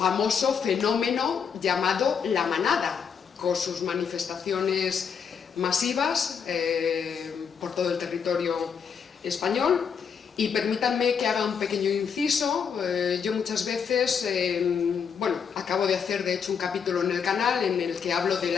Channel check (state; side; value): quieter; right; 6.8 dB